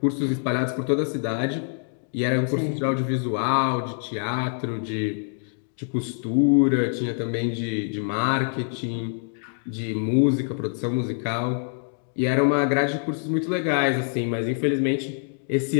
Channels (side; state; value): right; silent; digital silence